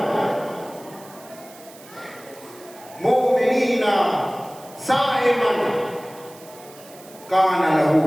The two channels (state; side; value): noise; right; hiss, 21 dB below the sound